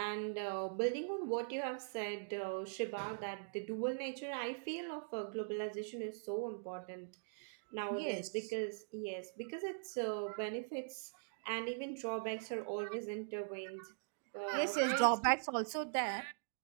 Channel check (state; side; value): silent; left; digital silence